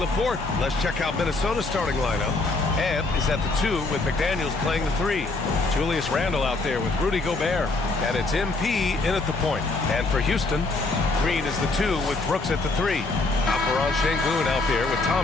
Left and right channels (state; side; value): quieter; right; 3.3 dB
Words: Let's check out Minnesota's starting lineup. Ant is at the 2 with McDaniels playing the 3. Julius Randle out there with Rudy Gobert. And it's MP in at the point. And for Houston, Green is the 2 with Brooks at the 3. Alperon Şengün out there with